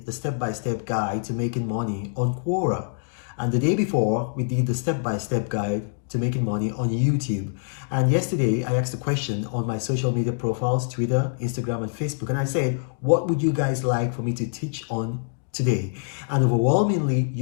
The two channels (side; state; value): right; silent; digital silence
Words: the step-by-step guide to making money on Quora, and the day before we did the step-by-step guide to making money on YouTube. And yesterday I asked a question on my social media profiles, Twitter, Instagram, and Facebook, and I said, what would you guys like for me to teach on today? And overwhelmingly,